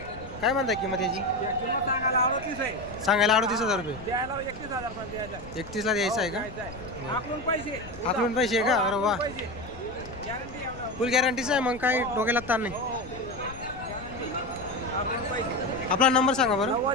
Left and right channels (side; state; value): left; noise; rumble, 15 dB below the sound